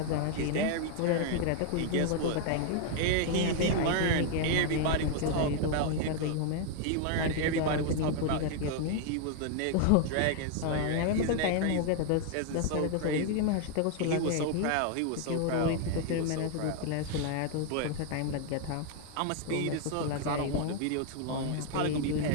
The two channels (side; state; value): both; different; correlation 0.00